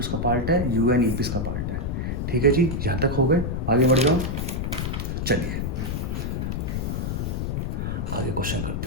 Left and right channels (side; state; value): left; noise; rumble, 1 dB below the sound